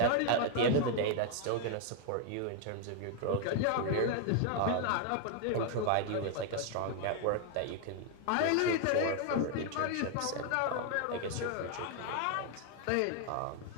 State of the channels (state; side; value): different; both; correlation 0.00